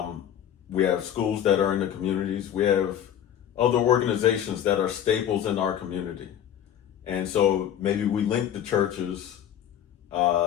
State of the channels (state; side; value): quieter; right; 10.1 dB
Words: We have schools that are in the communities. We have other organizations that are staples in our community. And so maybe we link the churches